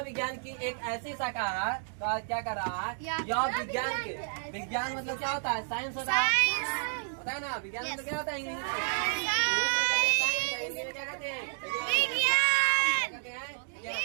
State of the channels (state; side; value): silent; left; digital silence